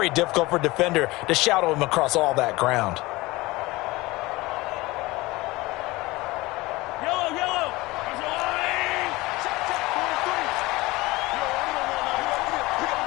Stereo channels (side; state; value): right; quieter; 20.9 dB